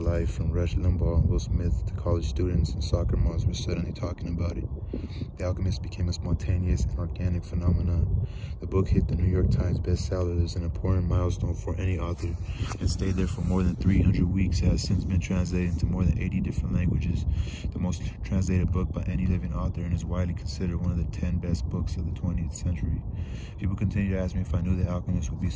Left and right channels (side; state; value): both; identical; correlation 1.00